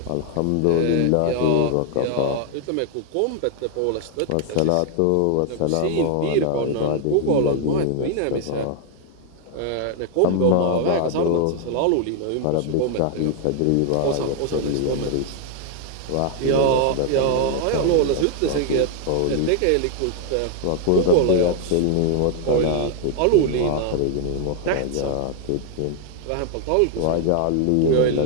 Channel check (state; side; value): different; both; correlation 0.00